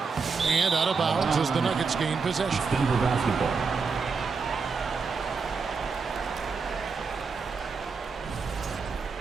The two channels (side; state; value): left; quieter; 5.0 dB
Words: And out of bounds as the Nuggets gain possession. Denver basketball.